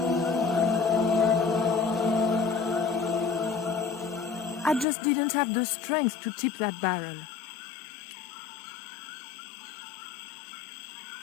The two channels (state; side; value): drops out; right; at 4.9 s